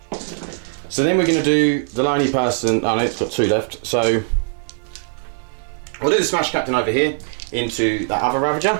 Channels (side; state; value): left; silent; 66 dB below the other